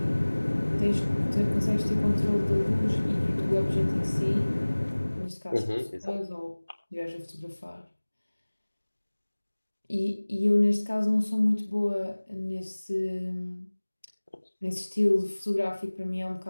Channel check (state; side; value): inverted; both; correlation -1.00